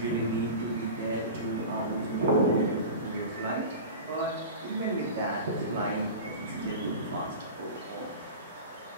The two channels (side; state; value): both; inverted; correlation -0.32